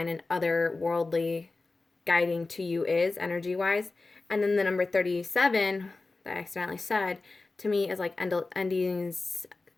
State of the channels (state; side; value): quieter; right; 3.5 dB